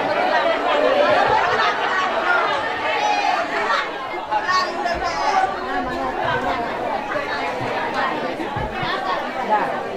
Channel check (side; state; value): both; identical; correlation 1.00